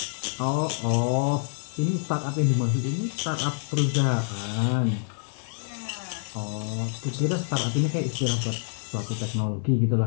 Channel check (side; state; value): right; silent; digital silence